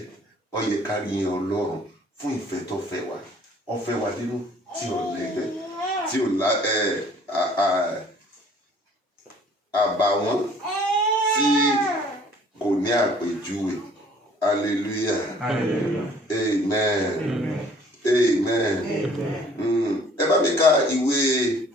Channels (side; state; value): both; normal; correlation 0.55